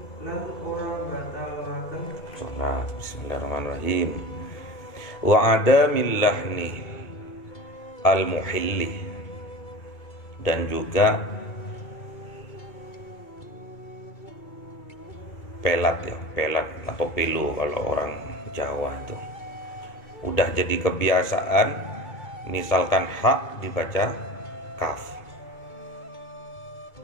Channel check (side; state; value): right; late; 1.8 ms